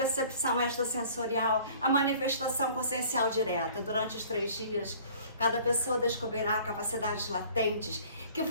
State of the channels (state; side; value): inverted; both; correlation -0.51